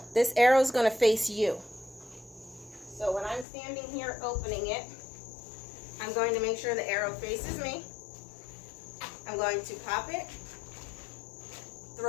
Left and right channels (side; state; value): right; drops out; at 3.5 s